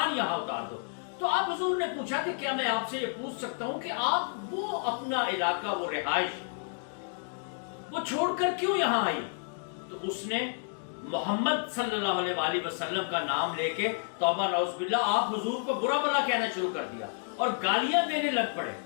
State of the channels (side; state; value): right; silent; 58 dB below the other